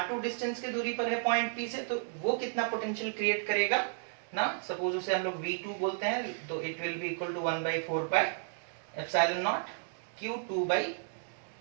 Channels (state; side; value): silent; left; digital silence